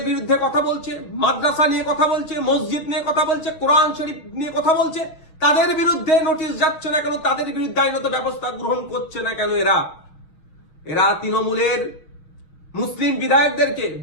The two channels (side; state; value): right; late; 6.3 ms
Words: বিরুদ্ধে কথা বলছে, মাদ্রাসা নিয়ে কথা বলছে, মসজিদ নিয়ে কথা বলছে, কোরআন শরীফ নিয়ে কথা বলছে, তাদের বিরুদ্ধে নোটিশ যাচ্ছে না কেন, তাদের বিরুদ্ধে আইনত ব্যবস্থা গ্রহণ করছে না কেন? এরা তৃণমূলের মুসলিম বিধায়কদেরকে